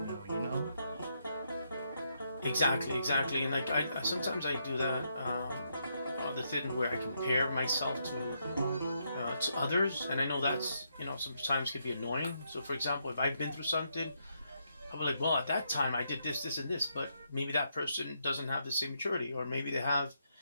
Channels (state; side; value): inverted; both; correlation -0.78